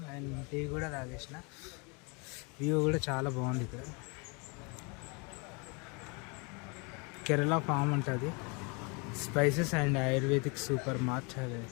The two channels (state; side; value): quieter; right; 31.4 dB